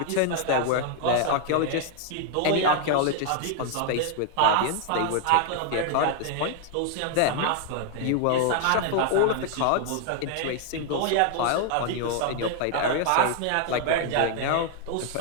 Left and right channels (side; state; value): both; different; correlation 0.00